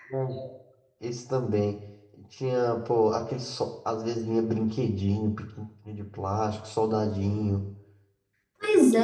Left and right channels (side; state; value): both; identical; correlation 1.00